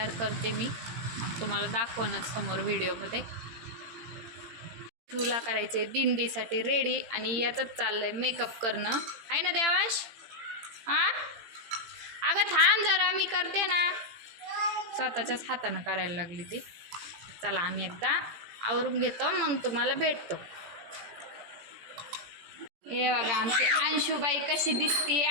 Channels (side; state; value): left; late; 18 ms